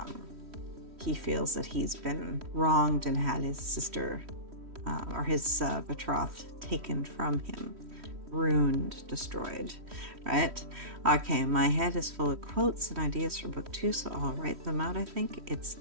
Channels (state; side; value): late; left; 3.1 ms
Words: He feels that he's been wronged and had his sister or his betrothed taken from him, ruined, destroyed, right? Okay, my head is full of quotes and ideas for book 2, so I'll write them out. I think it's